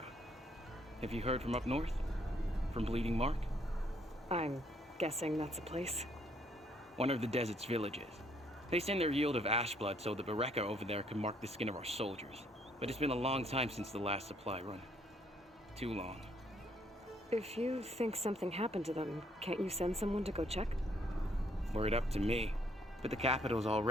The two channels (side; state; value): both; normal; correlation 0.68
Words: Have you heard from up north? From Bleeding Mark? I'm guessing that's a place. One of the desert's villages. They send their yield of ash blood so the Bereka over there can mark the skin of our soldiers. But it's been a long time since the last supply run. Too long. If you think something happened to them, can't you send someone to go check? Were it up to me. But the capital's